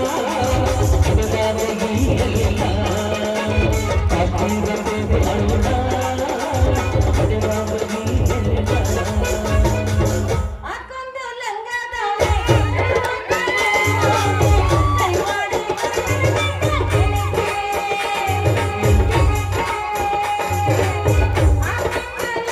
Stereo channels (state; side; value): identical; both; correlation 1.00